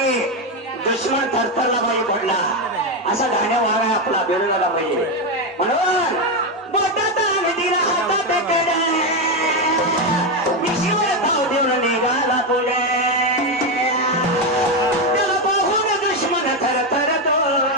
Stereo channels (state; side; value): normal; both; correlation 0.09